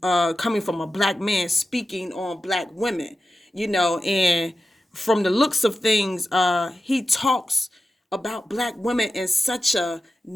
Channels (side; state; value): both; normal; correlation 0.92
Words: coming from a black man speaking on black women. And from the looks of things, he talks about black women in such a